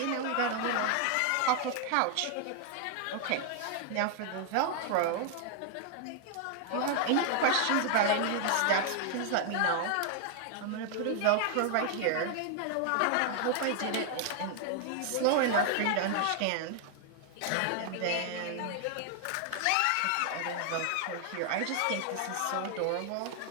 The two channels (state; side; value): different; both; correlation 0.00